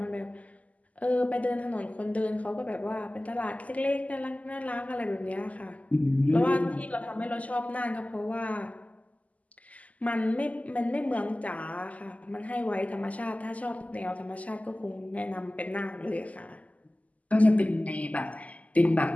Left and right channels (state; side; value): late; right; 0.073 ms